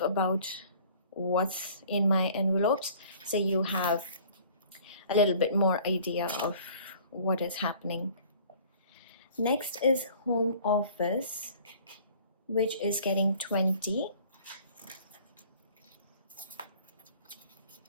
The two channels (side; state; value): both; inverted; correlation -0.51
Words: about what's in my envelopes so you have a little bit more idea of what is happening. Next is home office, which is getting 20.